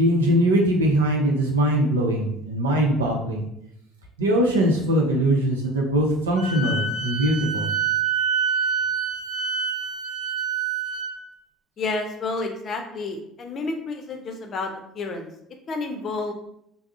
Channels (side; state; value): both; normal; correlation 0.32